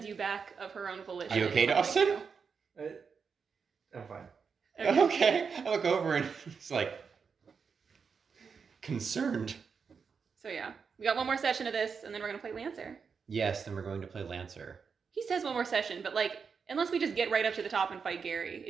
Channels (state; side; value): quieter; left; 5.8 dB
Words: you back of her own volition. Are you okay, It's something Dawson? new. I'm fine. Okay. I look over and it's like concerned. So yeah, we got one more session of this, and then we're gonna play Lancer. Yes, then we're going to play Lancer. He says one more session, but like, unless we just get right up to the top and fight Gary,